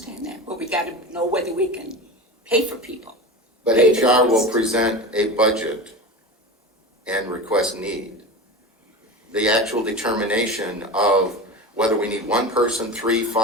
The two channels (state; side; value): normal; both; correlation 0.27